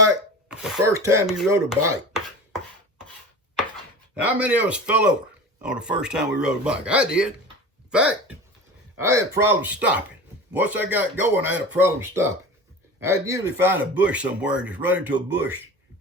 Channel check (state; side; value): normal; both; correlation 0.34